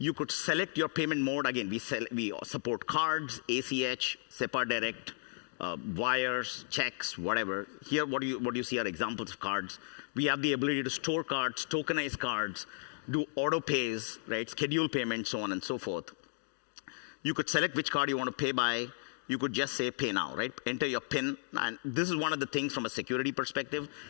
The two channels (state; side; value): silent; right; digital silence